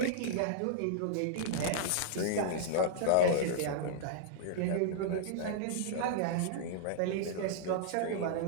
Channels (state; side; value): different; both; correlation -0.02